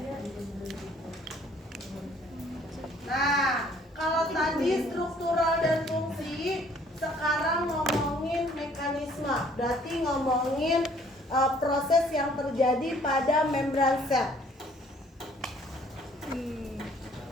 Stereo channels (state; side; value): normal; both; correlation 0.59